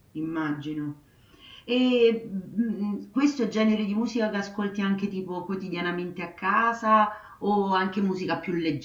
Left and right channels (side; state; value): both; identical; correlation 1.00